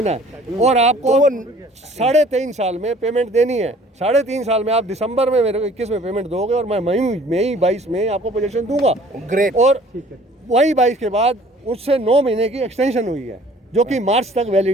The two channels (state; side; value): normal; both; correlation 0.53